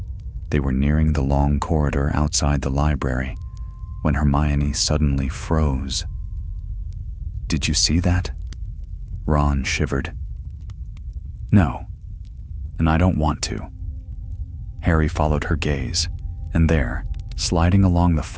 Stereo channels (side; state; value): both; identical; correlation 1.00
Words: They were nearing the long corridor outside the library when Hermione suddenly froze. "Did you see that?" Ron shivered. "No, and I don't want to." Harry followed her gaze, and there, sliding along the